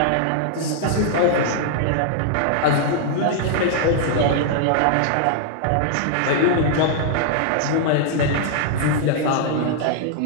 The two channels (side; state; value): both; different; correlation -0.01